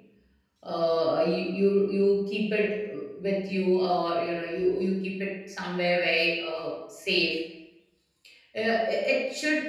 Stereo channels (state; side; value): identical; both; correlation 1.00